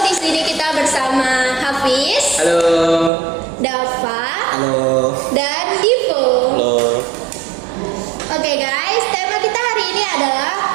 di sini kita bersama Hafiz, Halo. Dava, Halo. dan Divo. Halo. Oke guys, tema kita hari ini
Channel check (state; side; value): drops out; left; at 3.1 s